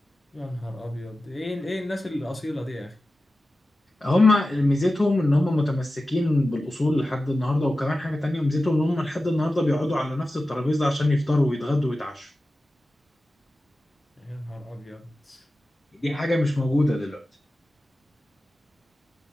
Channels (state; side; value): normal; both; correlation 0.94